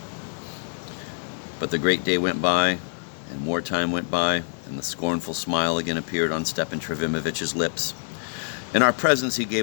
But the great day went by, and more time went by, and the scornful smile again appeared on Stepan Trofimovich's lips. In our presence he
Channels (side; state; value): right; silent; 61 dB below the other